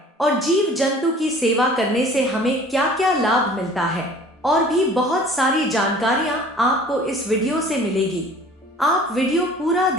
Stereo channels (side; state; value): both; normal; correlation 0.48